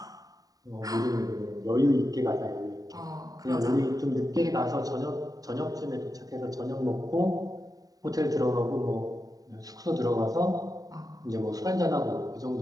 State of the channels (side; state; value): left; late; 0.18 ms